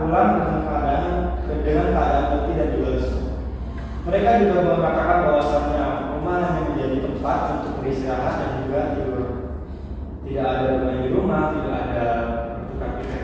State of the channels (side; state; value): both; identical; correlation 1.00